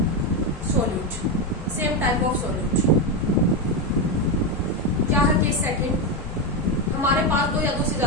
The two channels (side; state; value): both; normal; correlation 0.10